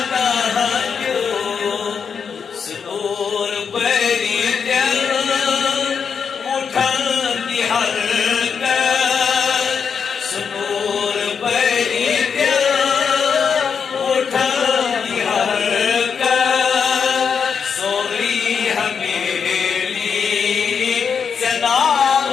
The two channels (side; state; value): right; quieter; 6.5 dB